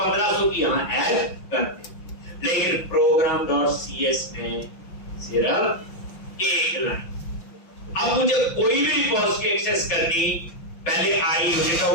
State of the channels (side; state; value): right; late; 5.9 ms